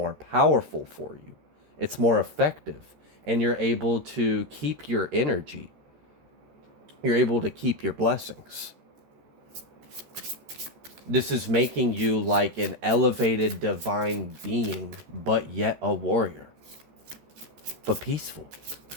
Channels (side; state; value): left; late; 13 ms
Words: powerful for you. It's more effective. And you're able to keep your energy. You're able to keep your blessings. This is making you like an elevated divine being, but yet a warrior. But peaceful.